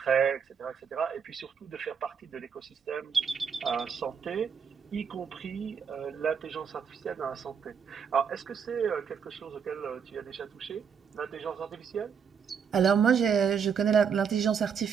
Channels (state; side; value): quieter; left; 6.9 dB